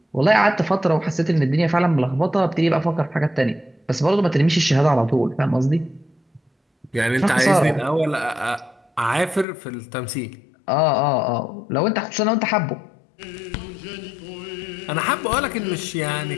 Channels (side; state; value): right; drops out; at 9.5 s